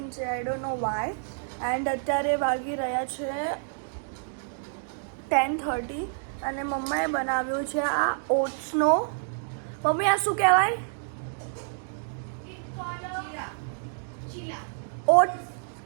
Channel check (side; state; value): left; silent; digital silence